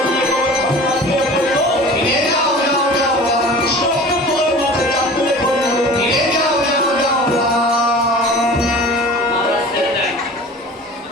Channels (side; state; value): both; normal; correlation 0.40